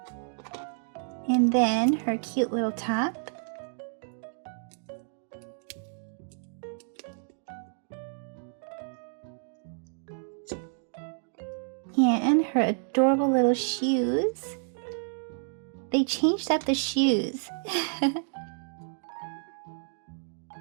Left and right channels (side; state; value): left; silent; digital silence